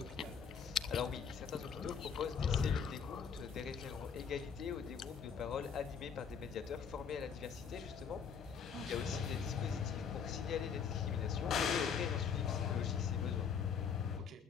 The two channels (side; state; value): right; quieter; 6.7 dB